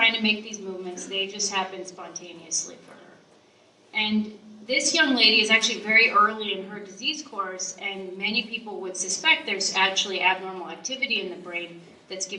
to make these movements, they just happen spontaneously for her. And this young lady is actually very early in her disease course, and many people would suspect there's actually abnormal activity in the brain that's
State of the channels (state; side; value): identical; both; correlation 1.00